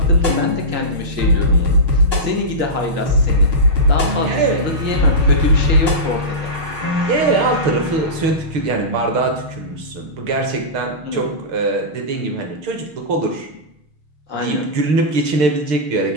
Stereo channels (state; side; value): late; left; 6.4 ms